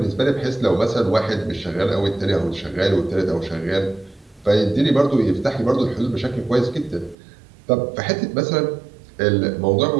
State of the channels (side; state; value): left; drops out; at 7.2 s